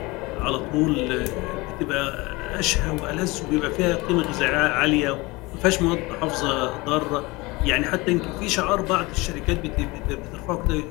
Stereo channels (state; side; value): quieter; right; 23.3 dB